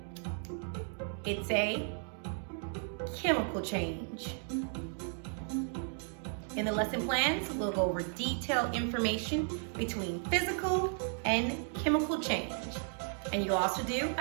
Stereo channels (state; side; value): silent; left; 55 dB below the other